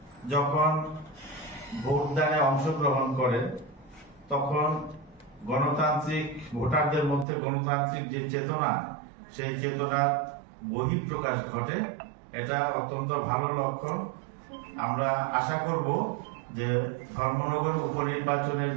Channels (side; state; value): left; drops out; at 7.2 s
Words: যখন ভোটদানে অংশগ্রহণ করে তখন গণতান্ত্রিক ভোটারদের মধ্যে গণতান্ত্রিক যে চেতনা, সেই চেতনার বহিঃপ্রকাশ ঘটে। এটা অত্যন্ত ভালো লক্ষণ। আমরা আশা করব যে ধর্মনগর উপনির্বাচনের